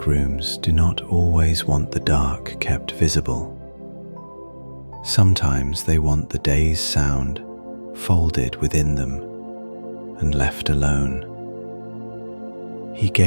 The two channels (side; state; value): both; inverted; correlation -1.00